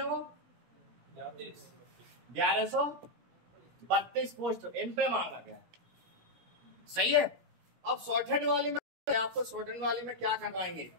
वो 1132 पोस्ट इन पे मांगा गया है, सही है। अब शॉर्ट हैंड वाली में आपको शॉर्ट हैंड वाली में क्या करवाएंगे,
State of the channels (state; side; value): late; left; 16 ms